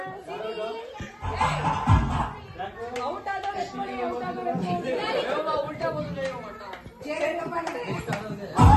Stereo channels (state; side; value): identical; both; correlation 1.00